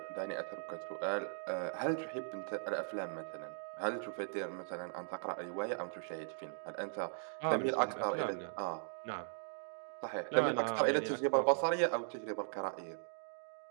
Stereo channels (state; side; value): silent; left; digital silence